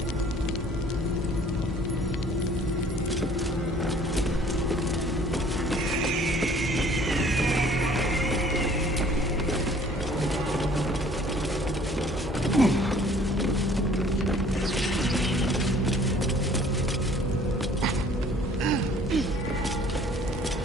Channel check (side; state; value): both; normal; correlation 0.54